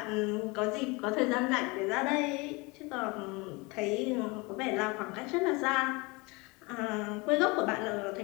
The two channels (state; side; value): quieter; right; 26.3 dB